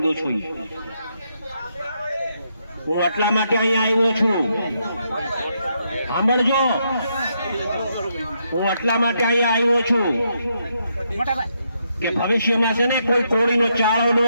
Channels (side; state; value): both; inverted; correlation -0.78